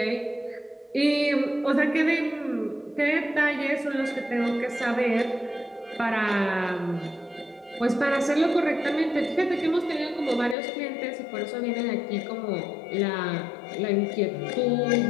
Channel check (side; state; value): right; drops out; at 10.6 s